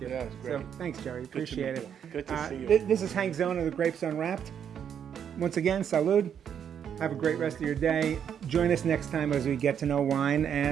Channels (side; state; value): left; quieter; 8.4 dB